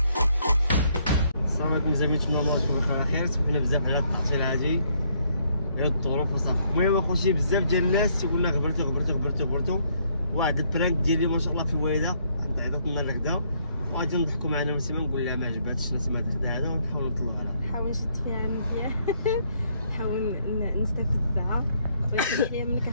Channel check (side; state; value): both; inverted; correlation -0.70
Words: السلام عليكم زعما نتمنى الله يكون بخير خير. سمحنا بزاف على التعطيل هادي على الظروف وصافي. المهم اخوتي بزاف ديال الناس تيقولنا غبرتو واحد البرانك ديالي ما شاء الله في الوالده عطات لنا الغدا وغادي نضحكوا معنا نسيما نقول لها ما عجباتش نسيما الغدا هذا ونحاول نطلعوا عليها. نحاول نشد فيها مزيان نحاول نستفزها ويحيى منك